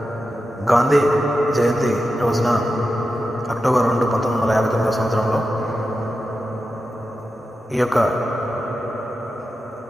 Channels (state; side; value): normal; both; correlation 0.90